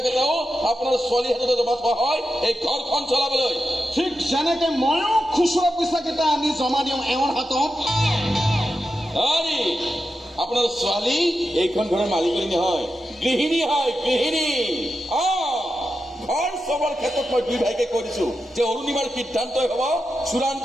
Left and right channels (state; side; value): normal; both; correlation 0.89